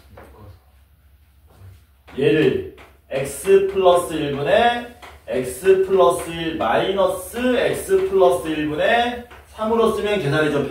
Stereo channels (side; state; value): both; identical; correlation 1.00